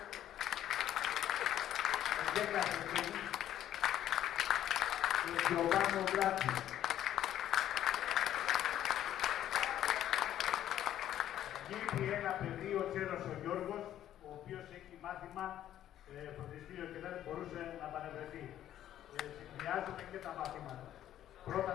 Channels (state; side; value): quieter; right; 11.7 dB